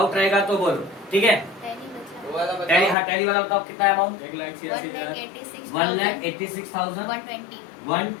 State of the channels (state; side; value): drops out; right; at 3.0 s